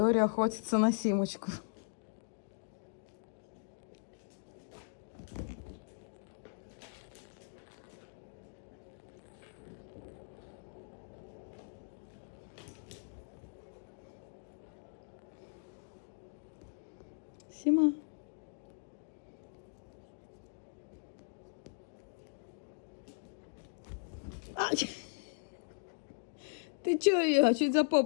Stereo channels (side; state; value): right; silent; digital silence